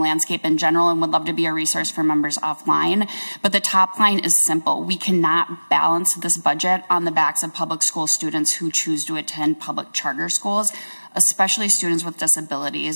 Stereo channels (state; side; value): inverted; both; correlation -1.00